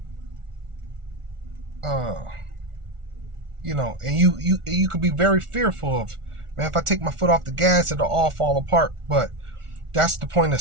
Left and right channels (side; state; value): left; late; 1.4 ms